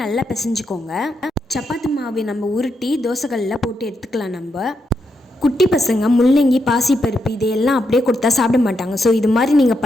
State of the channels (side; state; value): both; normal; correlation 0.82